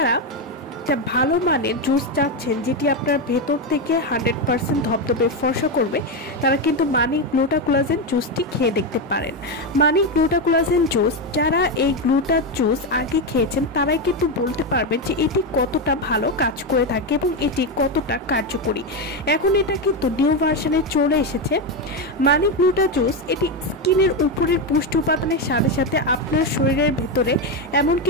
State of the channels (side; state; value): both; normal; correlation 0.09